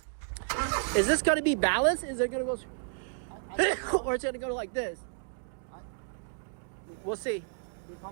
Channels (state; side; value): silent; left; digital silence